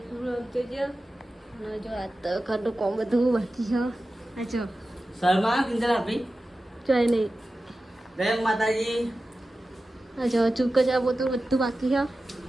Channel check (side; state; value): both; normal; correlation 0.94